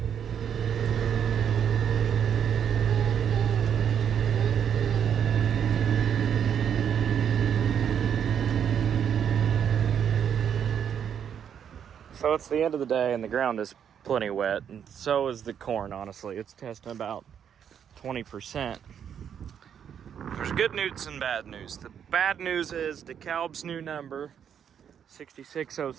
So it's the end of the day and the ground is plenty wet, and so is the corn, honestly. It's testing about 20%. There's good news and bad news. The bad news is DeKalb's new number,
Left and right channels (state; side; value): quieter; left; 8.4 dB